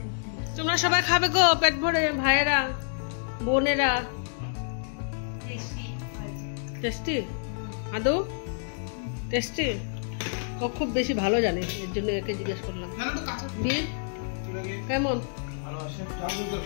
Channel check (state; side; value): silent; right; digital silence